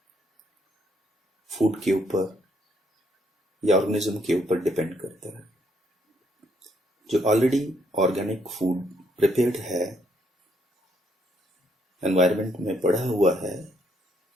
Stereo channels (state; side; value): normal; both; correlation 0.72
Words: फूड के ऊपर या ऑर्गेनिज्म के ऊपर डिपेंड करता है. जो ऑलरेडी ऑर्गेनिक फूड प्रिपेयर्ड है, एनवायरनमेंट में पड़ा हुआ है,